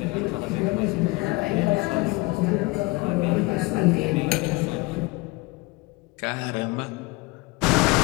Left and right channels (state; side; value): quieter; right; 24.1 dB